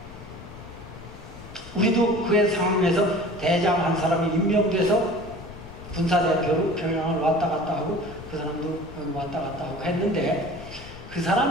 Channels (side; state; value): left; noise; rumble, 16 dB below the sound